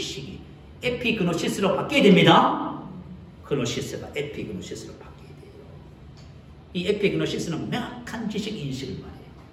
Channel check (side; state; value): both; identical; correlation 1.00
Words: 에피그노시스로 바뀌어야 됩니다. 그노시스가 에피그노시스로 바뀌어야 돼요. 이 에피그노시스는 명확한 지식 인식을 말해요.